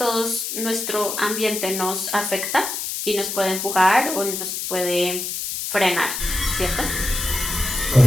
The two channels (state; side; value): noise; left; hiss, 4 dB below the sound